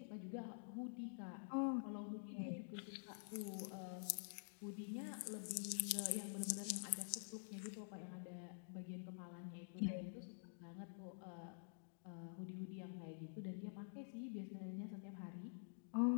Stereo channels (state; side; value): silent; right; digital silence